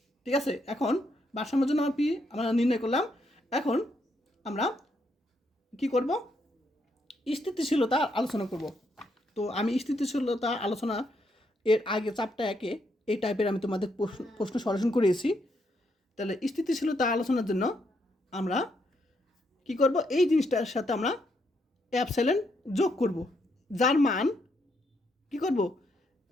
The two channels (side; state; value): both; normal; correlation 0.77